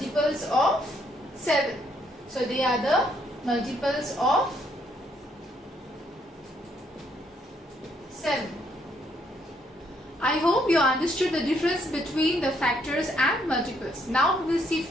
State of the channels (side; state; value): both; normal; correlation 0.71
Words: of 7. So they are the multiples of 7. I hope you understood the difference between the factors and multiples. Now we will see